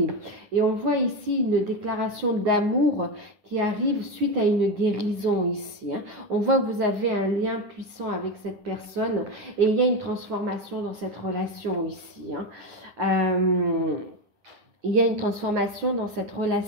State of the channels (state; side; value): late; left; 9.6 ms